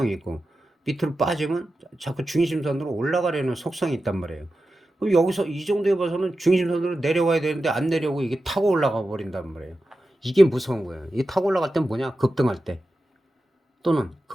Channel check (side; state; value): both; normal; correlation 0.92